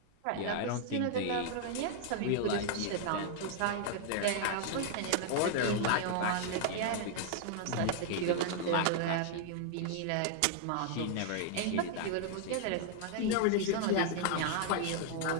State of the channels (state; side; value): different; both; correlation -0.01